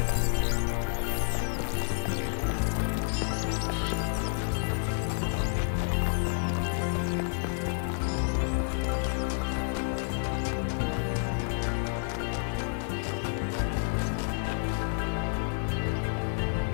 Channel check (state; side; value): silent; right; 58 dB below the other